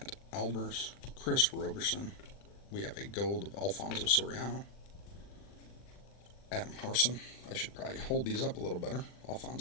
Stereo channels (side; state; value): right; late; 40 ms